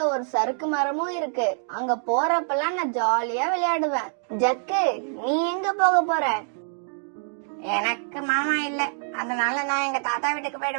ஒரு சறுக்கு மரமும் இருக்கு. அங்க போறப்பெல்லாம் நான் ஜாலியா விளையாடுவேன். ஜக்கு, நீ எங்க போக போற? எனக்கு மாமா இல்ல, அதனால நான் எங்க தாத்தா வீட்டுக்கு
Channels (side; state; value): left; silent; digital silence